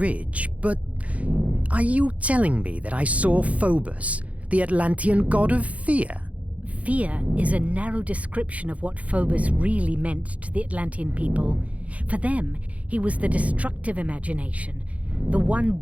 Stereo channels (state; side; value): late; left; 0.066 ms